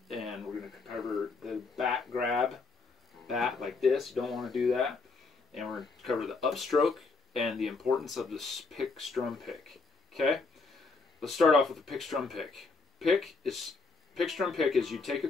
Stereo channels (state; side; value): quieter; right; 4.1 dB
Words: and we're going to cover the bat grab, bat like this, you don't want to do that. And we're going to cover the upstroke and the importance of this pick strum pick. Okay? Let's start off with the pick strum pick. Pick strum pick is you take a